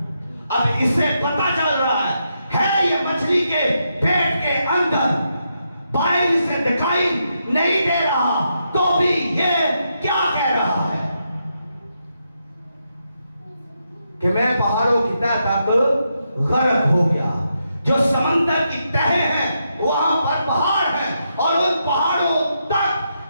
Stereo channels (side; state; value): both; inverted; correlation -0.82